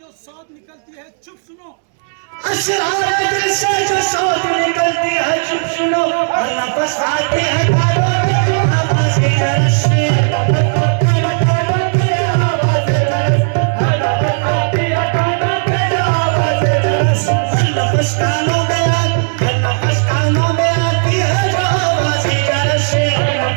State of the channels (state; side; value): silent; left; digital silence